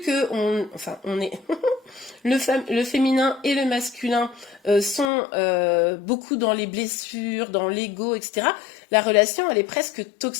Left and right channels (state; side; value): drops out; right; at 5.1 s